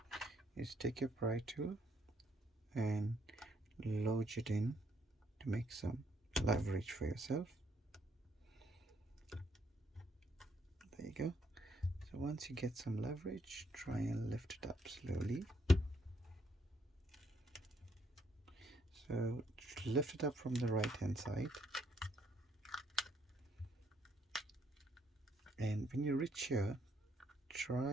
is take your pry tool and lodge it in to make some leverage for yourself. There you go. So once you get some leverage, try and lift it up slowly. So lift it up from the right hand side, and when you reach here,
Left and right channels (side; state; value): both; normal; correlation 0.71